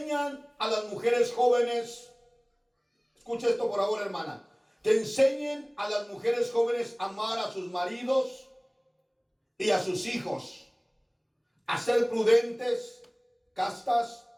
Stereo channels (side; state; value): both; identical; correlation 1.00